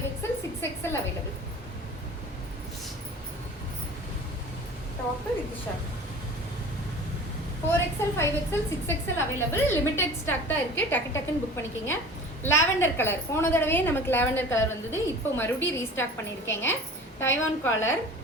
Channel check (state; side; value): normal; both; correlation 0.41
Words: 6XL available. Top with shawl 4XL, 5XL, 6XL available. Limited stock தான் இருக்குது. டக்குன்னு புக் பண்ணிக்கிங்க. லாவெண்டர் கலர், போன தடவையே நமக்கு லாவெண்டர் கலர் வந்தது. இப்போ மறுபடியும் ரீஸ்டாக் பண்ணியிருக்கேங்க. டைவான் காலர்,